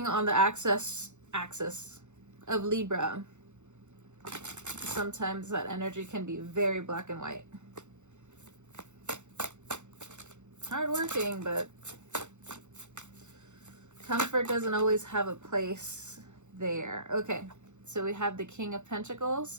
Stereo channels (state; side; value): late; left; 0.84 ms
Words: on the axis of Libra. Sometimes that energy can be very black and white. Hardworking, but comfort doesn't always have a place there. Okay, so we have the King of